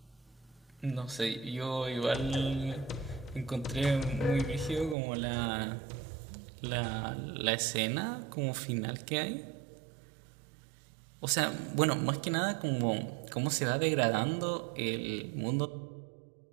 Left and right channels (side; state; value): left; drops out; at 5.0 s